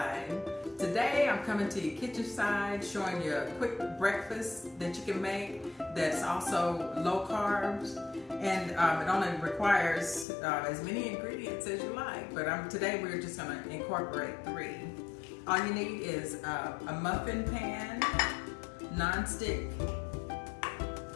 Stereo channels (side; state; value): right; drops out; at 10.2 s